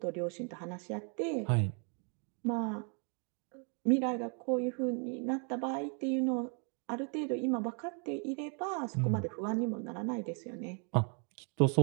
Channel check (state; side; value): quieter; left; 39.6 dB